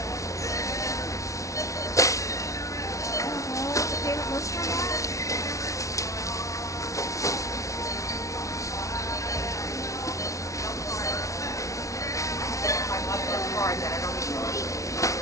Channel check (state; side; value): late; right; 0.15 ms